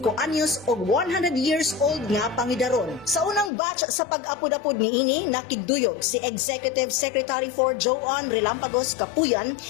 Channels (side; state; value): right; drops out; at 3.5 s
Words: anyos og 100 years old nga pangidaron. Sa unang batch sa pag-apod-apod niini, nakiduyog si Executive Secretary for Joan Relampagos Kapuyan,